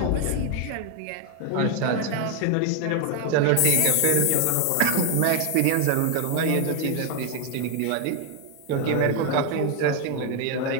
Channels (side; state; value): both; different; correlation 0.01